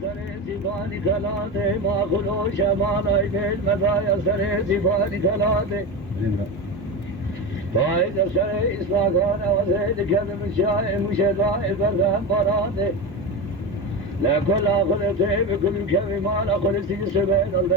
سر زیبانی کلاده ما خلو شمان ای بیل مزای سر زیبانی کلاده فاید سر اصلاحان و زید کدم شای مشدای بردن براده لکل آخلته بکل کمی مال آخلتی سبیل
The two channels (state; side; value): normal; both; correlation 0.21